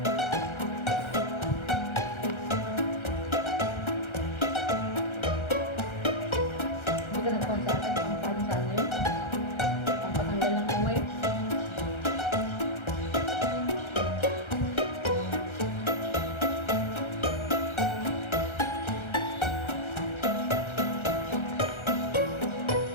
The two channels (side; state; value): right; late; 1.3 ms